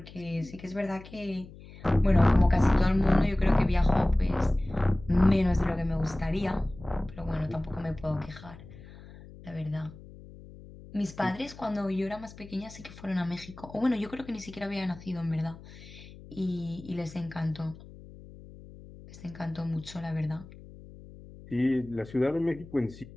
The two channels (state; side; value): noise; left; hum, 18 dB below the sound